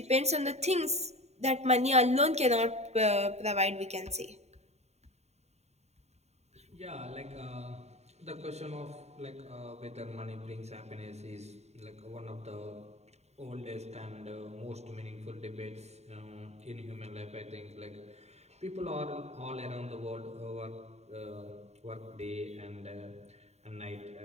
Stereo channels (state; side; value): late; left; 0.32 ms